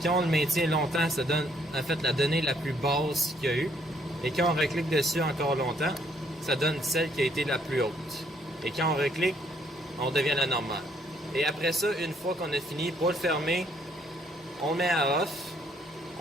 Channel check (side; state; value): both; normal; correlation 0.68